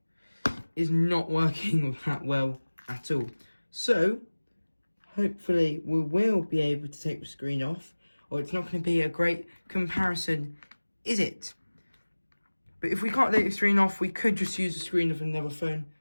is not working that well. at all. So, hopefully we will be able to take the screen off, or it's not going to be a great comparison, is it? But if we can't take the screen off, we could just use the screen of another phone.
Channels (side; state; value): both; inverted; correlation -1.00